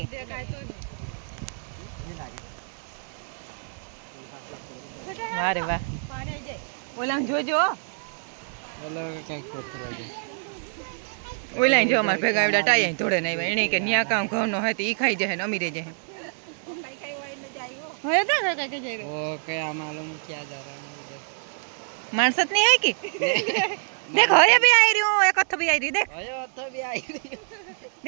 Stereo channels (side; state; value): left; silent; digital silence